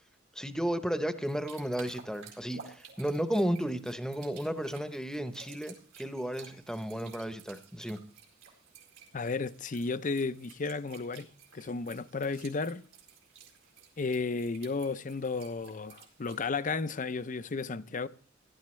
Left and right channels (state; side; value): normal; both; correlation 0.61